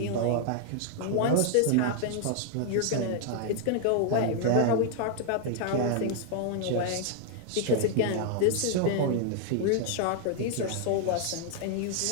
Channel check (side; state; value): both; different; correlation 0.00